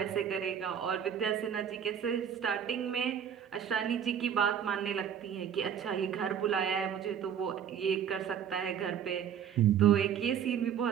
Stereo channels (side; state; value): left; quieter; 8.5 dB